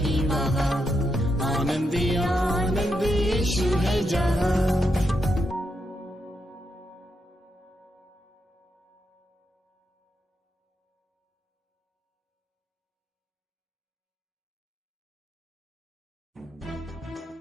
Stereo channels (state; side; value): normal; both; correlation 0.82